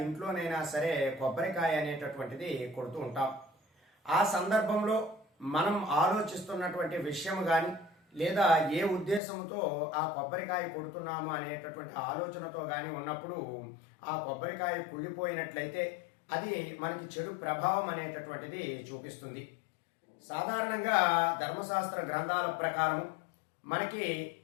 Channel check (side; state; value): right; drops out; at 9.2 s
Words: ఇంట్లోనైనా సరే కొబ్బరికాయ అనేటటువంటిది కొడుతూ ఉంటాం. ఆ సందర్భంలో మనం ఆలోచిస్తున్నటువంటి విషయం కానీ లేదా ఏ ఉద్దేశంతో ఆ కొబ్బరికాయ కొడుతున్నాము అనేటటువంటి ఆలోచనతో కానీ ఉన్నప్పుడు ఆ కొబ్బరికాయ కుళ్ళిపోయినట్లయితే అది మనకి చెడు ప్రభావం అనేటటువంటిది చూపిస్తుంది. సాధారణంగా ధర్మశాస్త్ర గ్రంథాల ప్రకారము మనకి